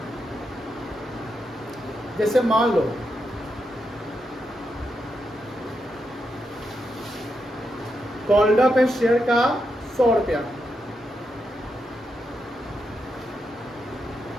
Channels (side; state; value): both; normal; correlation 0.84